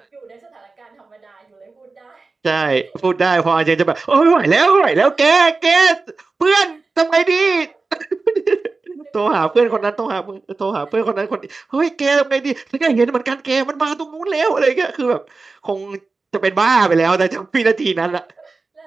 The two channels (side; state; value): left; quieter; 3.9 dB